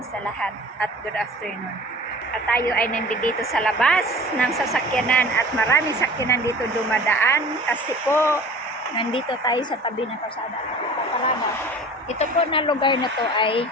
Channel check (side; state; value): both; normal; correlation 0.42